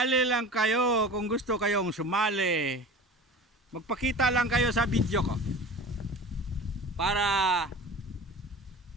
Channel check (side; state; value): both; normal; correlation 0.37